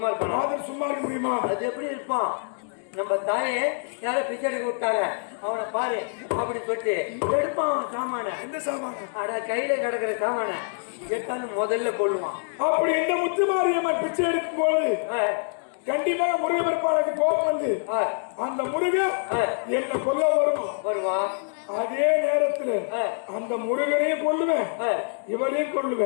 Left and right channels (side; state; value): right; silent; digital silence